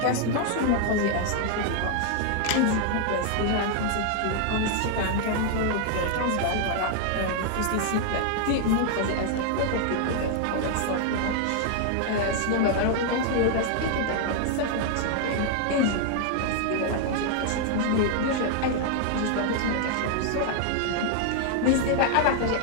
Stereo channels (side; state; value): both; different; correlation 0.00